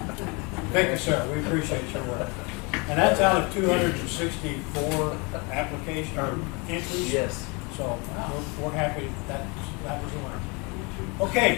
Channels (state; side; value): quieter; right; 29.5 dB